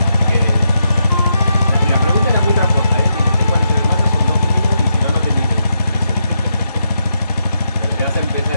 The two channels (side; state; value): both; inverted; correlation -0.81